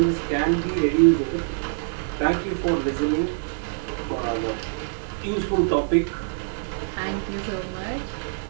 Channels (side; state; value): left; silent; digital silence